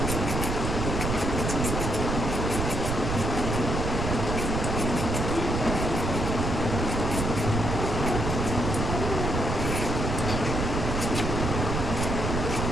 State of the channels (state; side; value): noise; right; rumble, 1 dB below the sound